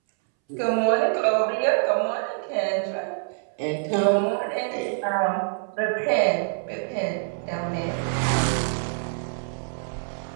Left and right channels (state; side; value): silent; left; 61 dB below the other